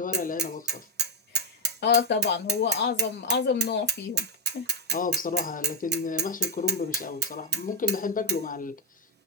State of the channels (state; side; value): normal; both; correlation 0.06